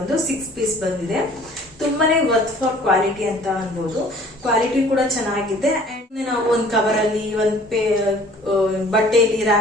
6 ಪೀಸ್ ಬಂದಿದೆ. ತುಂಬಾನೇ ವರ್ತ್ ಫಾರ್ ಕ್ವಾಲಿಟಿ ಅಂತ ಅನ್ಬೋದು. ಕ್ವಾಲಿಟಿ ಕೂಡ ಚೆನ್ನಾಗಿದೆ. ಅಂಡ್ ನಾವು ಒಂದು ಕವರ್ ಅಲ್ಲಿ ಒಂದು ಬಟ್ಟೆಯಲ್ಲಿ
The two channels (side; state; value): both; normal; correlation 0.52